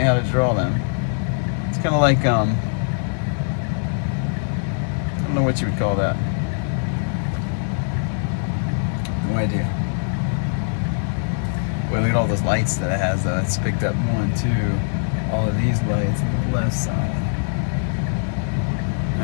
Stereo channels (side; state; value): right; silent; 63 dB below the other